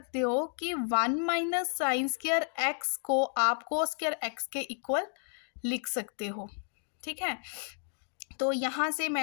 हो कि 1 माइनस साइन स्क्वायर एक्स को आप कोस स्क्वायर एक्स के इक्वल लिख सकते हो। ठीक है, तो यहाँ से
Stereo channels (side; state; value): right; silent; 56 dB below the other